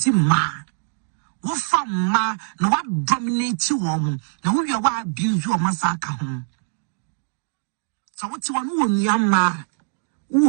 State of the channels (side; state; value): left; silent; digital silence